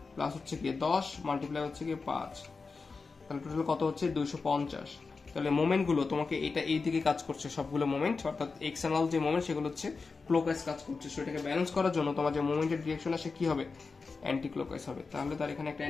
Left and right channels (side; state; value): right; quieter; 4.4 dB